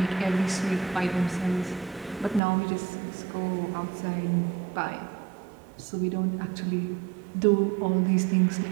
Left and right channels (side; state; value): left; drops out; at 2.4 s